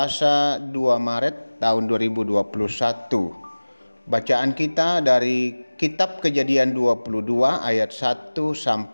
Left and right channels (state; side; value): inverted; both; correlation -1.00